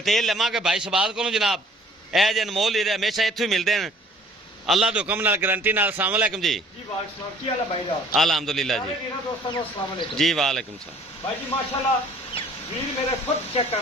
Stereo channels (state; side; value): normal; both; correlation 0.54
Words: लवांगे भाई शबाज को जनाब। ए जे अनमोल हीरे हमेशा इत्थों ही मिलते हैं अल्लाह के हुक्म नाल गारंटी नाल। अस्सलाम वालेकुम जी। अल्हम्दुलिल्लाह जी। जी वालेकुम सलाम भाई जी। माशाल्लाह वीर मेरे खुद चेक